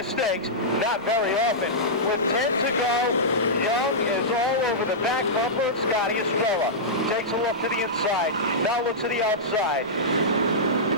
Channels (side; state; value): both; normal; correlation -0.13